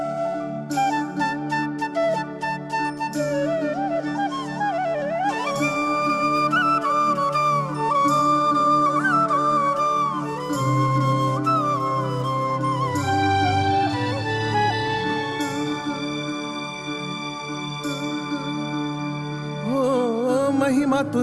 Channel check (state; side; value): identical; both; correlation 1.00